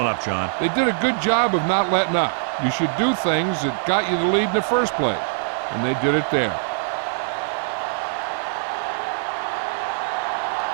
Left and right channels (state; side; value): silent; left; digital silence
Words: up, John. They did a good job of not letting up. You should do things that got you the lead in the first place, and they did it there.